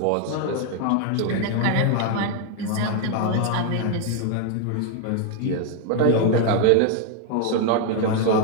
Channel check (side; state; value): both; different; correlation 0.01